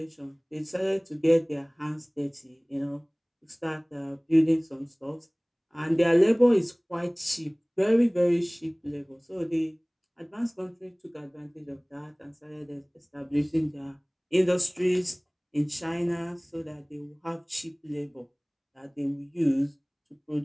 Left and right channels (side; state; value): both; identical; correlation 1.00